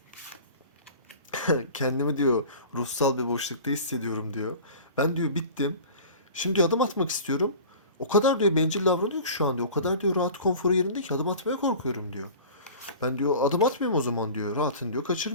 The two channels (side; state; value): both; inverted; correlation -0.40